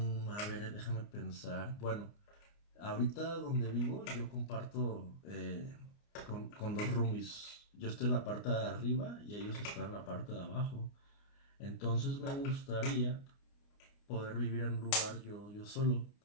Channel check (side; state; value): right; late; 29 ms